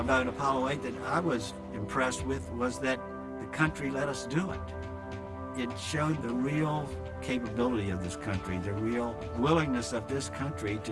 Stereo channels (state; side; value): identical; both; correlation 1.00